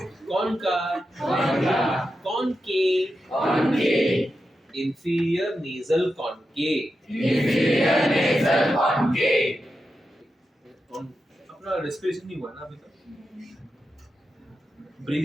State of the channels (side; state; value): both; normal; correlation 0.89